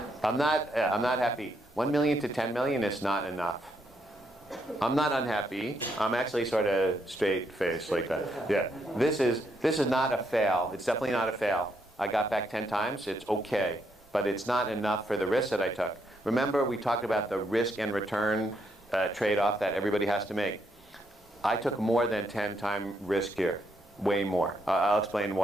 I'm not happy. 1 million to 10 million is not enough. I'm not unhappy. I'm actually sort of straight face like that. Yeah. This is not a fail. It's definitely not a fail. I got back 10 times. It's okay, but it's not enough for the risk that I took. Remember, we talked about the risk and return trade-off that everybody has to make. I took more than 10-time risk here. Way more. I'll explain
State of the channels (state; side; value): normal; both; correlation 0.76